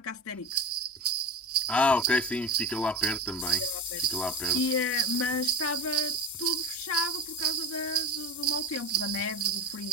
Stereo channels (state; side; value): normal; both; correlation 0.28